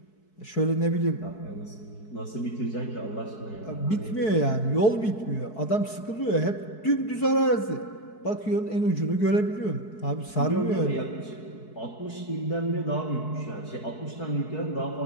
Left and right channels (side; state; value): right; late; 4.6 ms